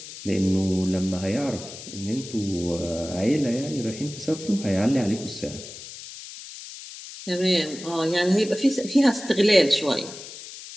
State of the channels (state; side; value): noise; left; hiss, 13 dB below the sound